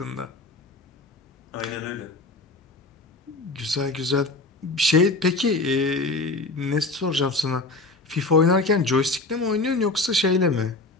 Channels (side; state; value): right; quieter; 3.2 dB